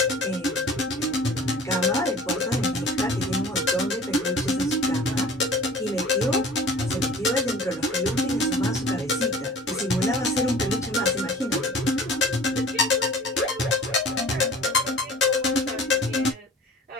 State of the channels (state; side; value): normal; both; correlation 0.44